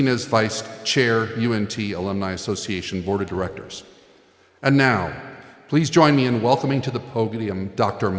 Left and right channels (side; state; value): both; identical; correlation 1.00